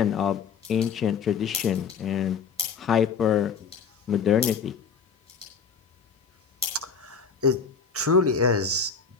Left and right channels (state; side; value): quieter; right; 5.9 dB